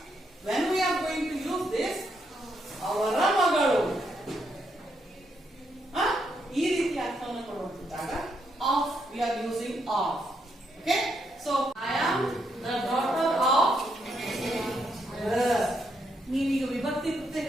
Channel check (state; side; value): normal; both; correlation 0.78